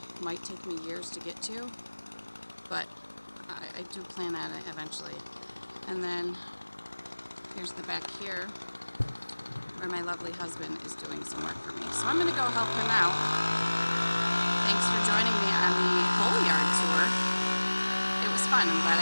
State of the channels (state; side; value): inverted; both; correlation -1.00